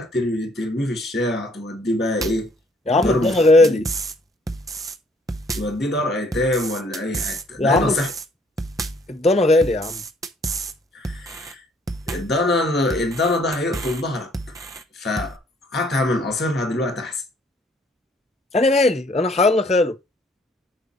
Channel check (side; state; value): both; normal; correlation 0.63